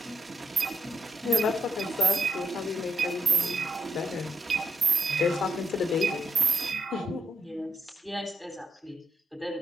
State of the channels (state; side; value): normal; both; correlation 0.80